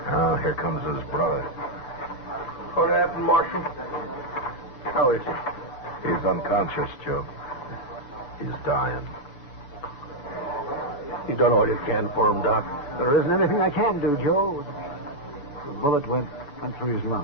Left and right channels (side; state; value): right; late; 7.0 ms